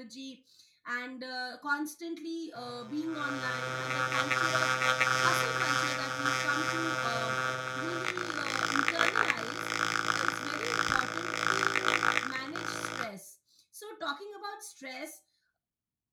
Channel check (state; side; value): identical; both; correlation 1.00